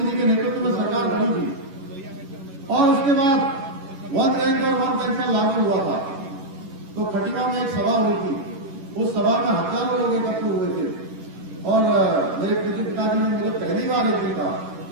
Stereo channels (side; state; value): left; late; 11 ms